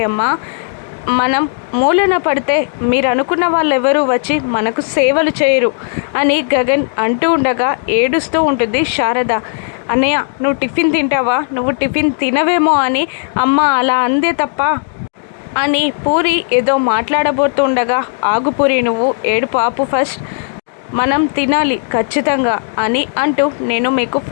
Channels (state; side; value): silent; right; digital silence